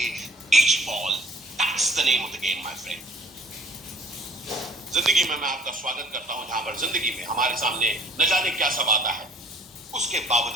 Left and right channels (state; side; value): normal; both; correlation 0.53